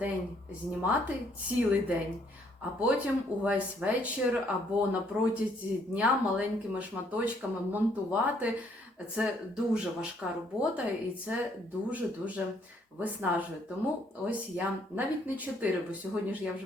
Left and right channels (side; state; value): both; normal; correlation 0.67